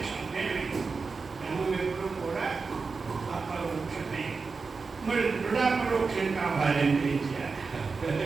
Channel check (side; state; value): left; quieter; 4.6 dB